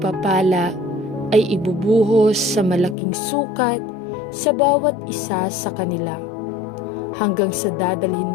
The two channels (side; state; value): right; drops out; at 3.0 s